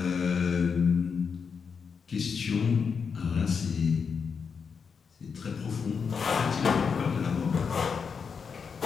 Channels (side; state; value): right; quieter; 6.0 dB